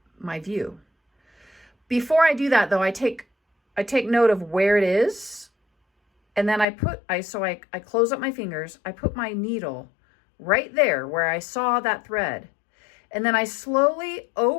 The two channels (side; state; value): right; drops out; at 6.7 s